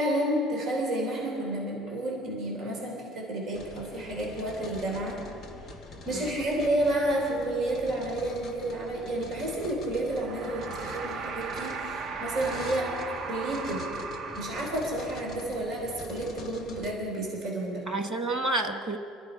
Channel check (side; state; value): both; normal; correlation 0.54